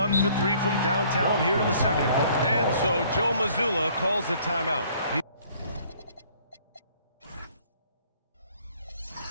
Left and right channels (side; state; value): both; inverted; correlation -0.58